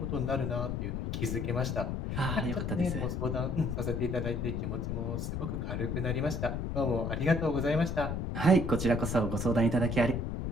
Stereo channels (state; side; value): noise; left; rumble, 2 dB below the sound